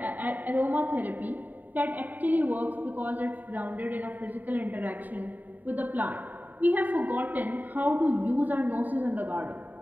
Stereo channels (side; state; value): left; late; 0.086 ms